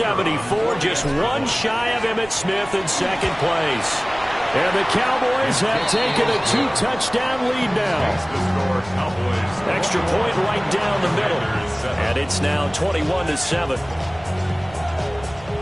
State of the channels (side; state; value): right; noise; rumble, 20 dB below the sound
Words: just 1 shy of Emmitt Smith in second place. And the Cowboys have taken a 2-touchdown lead now. Extra point right down the middle. And it's now 21-7.